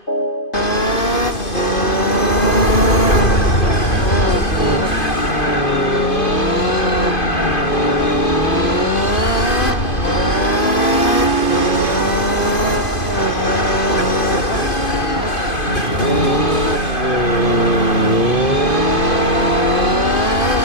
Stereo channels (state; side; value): late; right; 2.5 ms